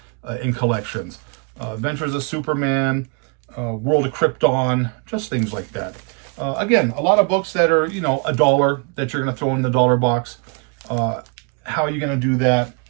in collections, Adventures of Superman, World of Krypton, just things like that. Again, a lot of books that are, you know, $1 that you're going to throw in the dollar box. How are you going to do that?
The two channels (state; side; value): quieter; left; 36.7 dB